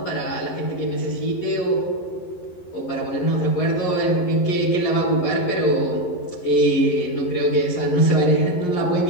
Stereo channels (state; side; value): late; right; 11 ms